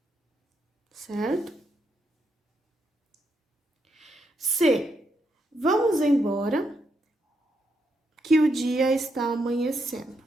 certo? C. Vamos embora, que o dia está amanhecendo.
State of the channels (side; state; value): both; normal; correlation 0.80